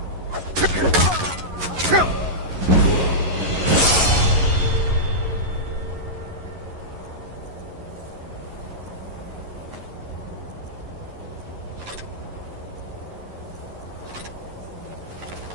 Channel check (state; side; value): late; left; 11 ms